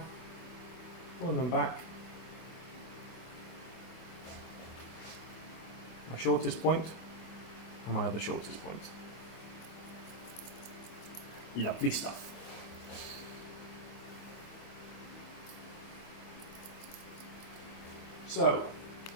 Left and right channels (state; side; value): late; right; 25 ms